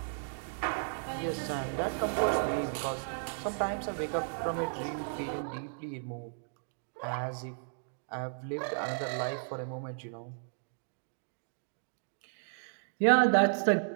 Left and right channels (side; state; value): left; silent; digital silence